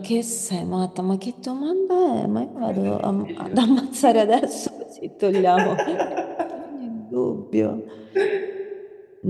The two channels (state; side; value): identical; both; correlation 1.00